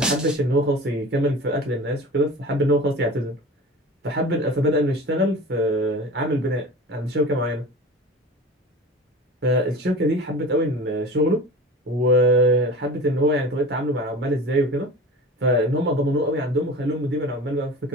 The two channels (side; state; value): both; normal; correlation 0.36